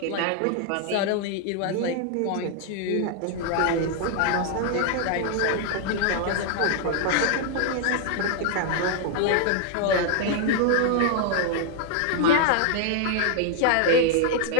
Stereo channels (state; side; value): different; both; correlation 0.00